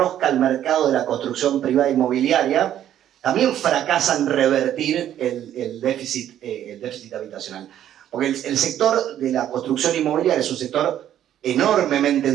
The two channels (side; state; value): left; quieter; 11.1 dB